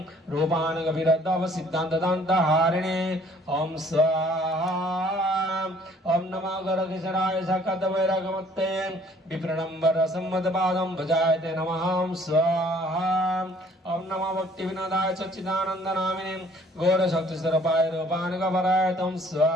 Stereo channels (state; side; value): normal; both; correlation 0.58